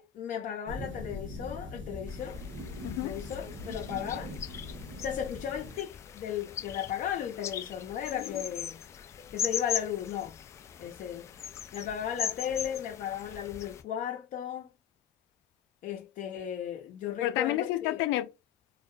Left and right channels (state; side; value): quieter; right; 9.0 dB